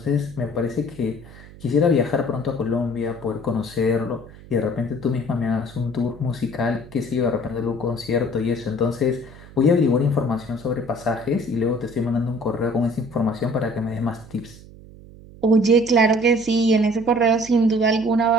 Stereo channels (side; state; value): right; noise; hum, 19 dB below the sound